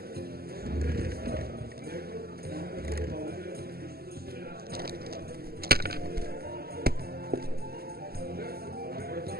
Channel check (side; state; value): left; late; 0.45 ms